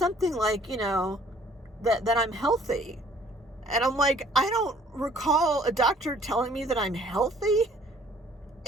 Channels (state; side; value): normal; both; correlation 0.57